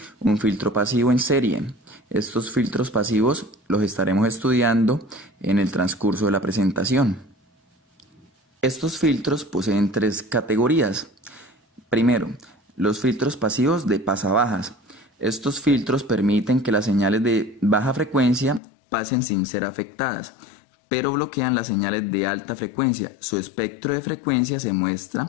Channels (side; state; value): right; drops out; at 18.6 s